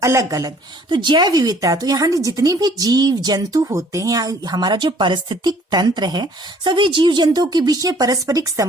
अलग अलग। तो जैव विविधता, तो यहाँ जितने भी जीव जंतु होते हैं, हमारा जो पारिस्थितिक तंत्र है, सभी जीव जंतुओं के बीच में पारस्परिक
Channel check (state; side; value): normal; both; correlation 0.57